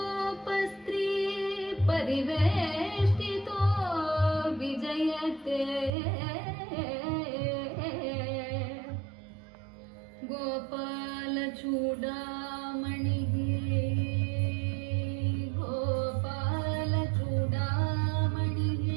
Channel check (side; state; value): left; drops out; at 5.9 s